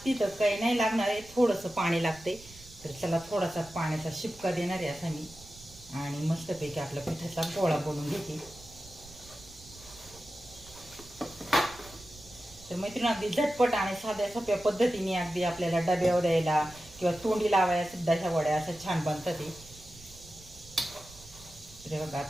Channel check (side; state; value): right; noise; rumble, 20 dB below the sound